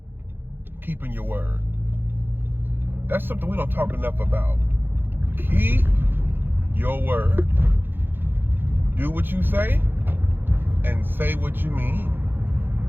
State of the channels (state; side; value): late; left; 0.10 ms